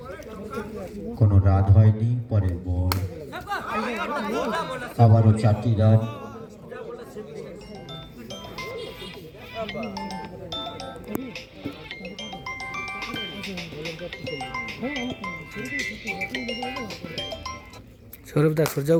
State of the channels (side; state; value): both; identical; correlation 1.00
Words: কোনো রান হয়নি। পরের বল আবারও 4টি রান।